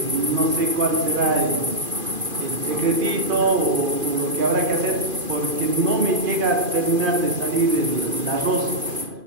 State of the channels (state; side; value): late; left; 2.5 ms